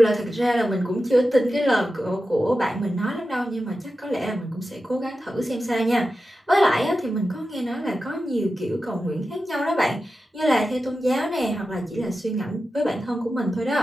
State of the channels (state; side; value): normal; both; correlation 0.92